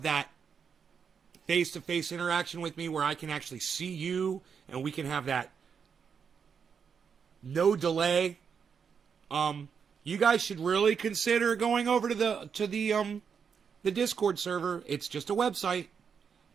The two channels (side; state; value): left; quieter; 6.6 dB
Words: that face-to-face interaction with me where I can actually see you and we can have that no delay, you guys should really consider going over to the Discord server. It's just a website,